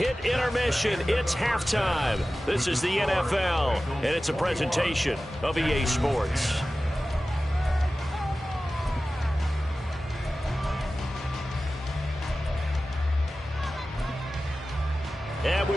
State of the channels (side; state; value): both; normal; correlation 0.95